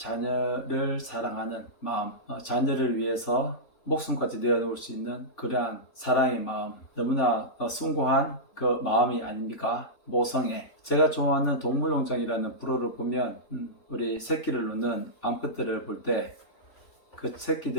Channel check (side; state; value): right; late; 3.5 ms